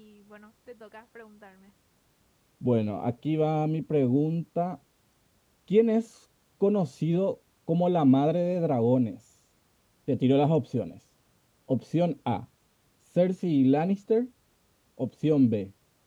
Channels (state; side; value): identical; both; correlation 1.00